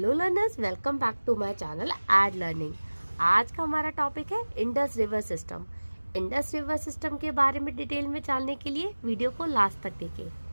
learners, welcome back to my channel Ed Learning. आज का हमारा टॉपिक है Indus river system. Indus river system के बारे में डिटेल में जानने के लिए वीडियो को लास्ट तक देखें।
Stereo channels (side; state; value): both; inverted; correlation -1.00